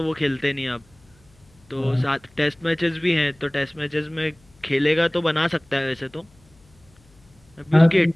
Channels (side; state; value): left; noise; hum, 30 dB below the sound